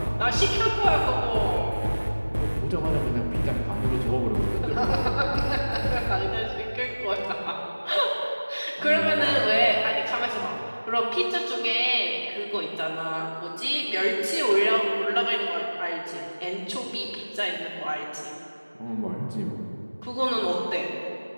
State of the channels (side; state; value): both; inverted; correlation -1.00